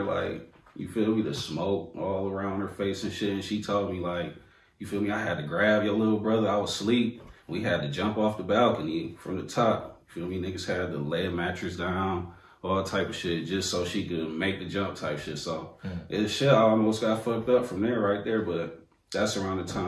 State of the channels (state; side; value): identical; both; correlation 1.00